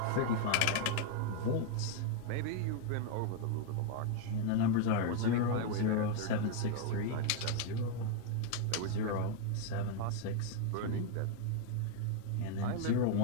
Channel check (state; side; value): different; both; correlation 0.00